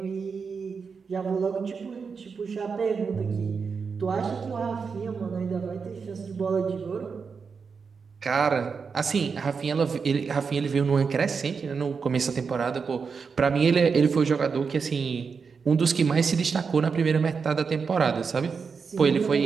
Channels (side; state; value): left; quieter; 5.5 dB